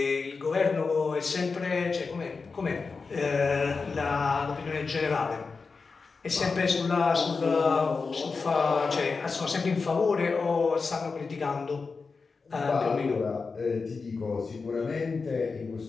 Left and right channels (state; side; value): quieter; right; 4.6 dB